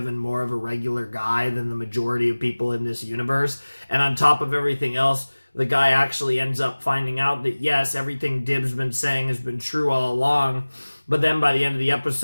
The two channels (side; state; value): both; inverted; correlation -1.00